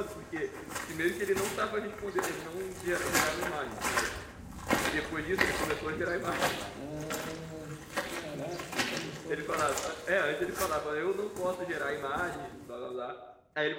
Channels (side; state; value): both; identical; correlation 1.00